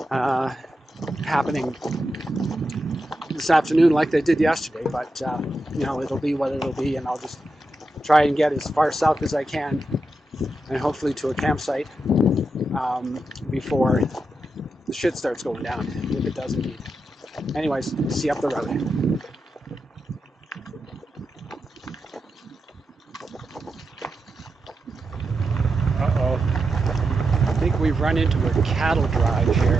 happening this afternoon like they did yesterday. But it'll be what it'll be, and I'll just try and get as far south as I can, and hopefully to a campsite before the shit starts going down, if it does indeed. Anyways, see you up the road. Uh-oh. I think we've run into a cattle drive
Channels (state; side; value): normal; both; correlation 0.87